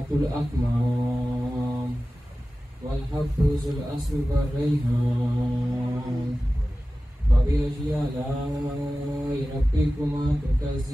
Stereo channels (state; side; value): normal; both; correlation 0.96